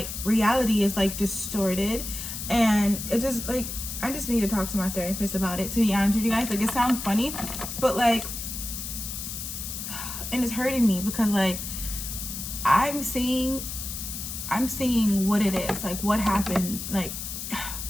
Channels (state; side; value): noise; left; hiss, 6 dB below the sound